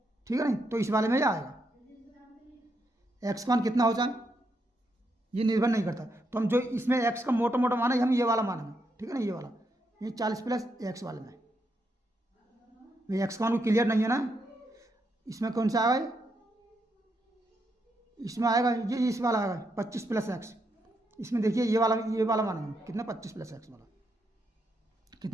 ठीक है नहीं, तो इस वाले में ही आएगा। एक्स का मान कितना हो जाए ये निर्भर नहीं करता, तो हम जो इसमें एक्स का मोटा मोटा मान है हम ये वाला मानेंगे। ठीक है ना, ये वाला, ये 40 प्लस एक्स वाले में भाई एक्स का मान क्लियर नहीं है ना, इसमें कौन सा आएगा, इसमें आएगा ये इस वाला आएगा 25 प्लस एक्स, इसमें देखिए ये वाला मानेंगे कितना 25 प्लस एक्स वाला,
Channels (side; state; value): both; normal; correlation 0.80